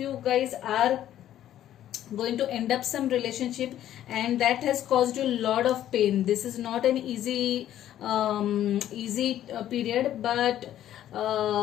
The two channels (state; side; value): quieter; right; 11.9 dB